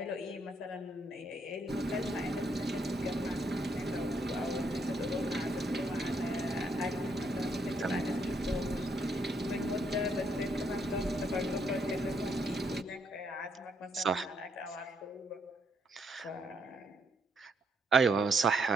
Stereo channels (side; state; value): both; normal; correlation 0.74